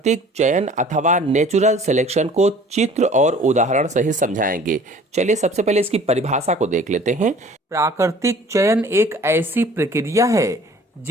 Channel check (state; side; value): normal; both; correlation 0.50